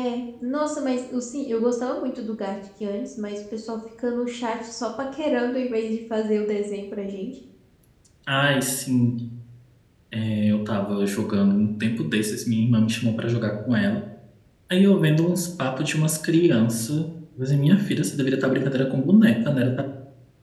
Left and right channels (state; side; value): identical; both; correlation 1.00